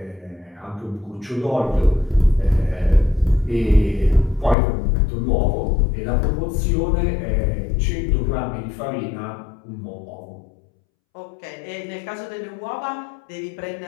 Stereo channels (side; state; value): right; drops out; at 4.5 s